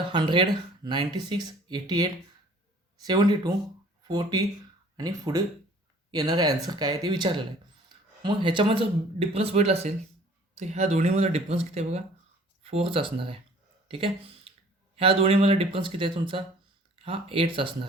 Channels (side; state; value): both; normal; correlation 0.52